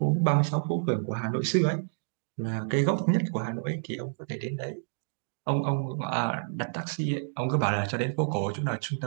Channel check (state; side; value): silent; left; digital silence